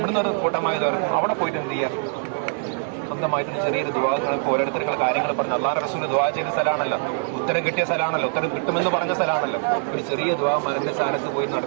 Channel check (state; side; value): silent; left; 63 dB below the other